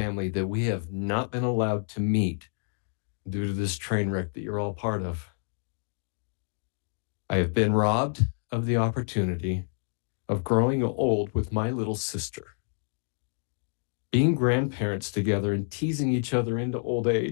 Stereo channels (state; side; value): silent; right; 58 dB below the other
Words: that we have not been allowed to meet due to this train wreck that you're all part of. I have been robbed of the opportunity of growing old with my little sister, being grandparents together and teasing each other into old